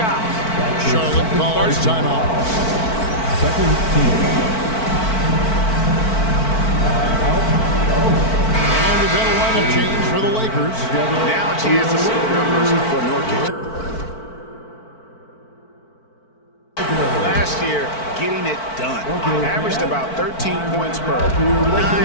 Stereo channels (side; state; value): right; late; 4.5 ms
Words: Charlotte calls timeout. Second team. And we've got a lineup change for the Lakers. Now a chance to see the numbers for Nurkic. Last year, getting it done. Averaged about 13 points per,